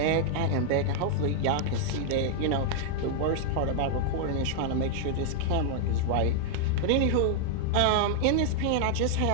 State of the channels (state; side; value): different; both; correlation 0.00